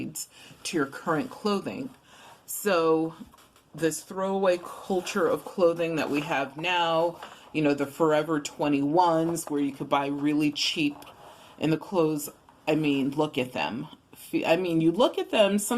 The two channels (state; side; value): identical; both; correlation 1.00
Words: to your current clothing. So this throwaway culture of clothing that we have now, the Forever 21s where you could buy really cheap, and the clothes, look at them. You look at them,